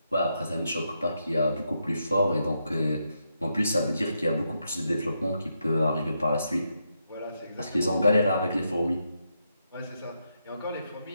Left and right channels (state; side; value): inverted; both; correlation -0.82